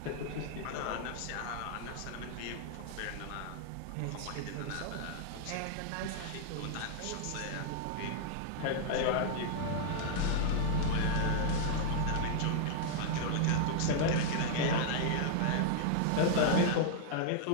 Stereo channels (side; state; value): both; different; correlation -0.01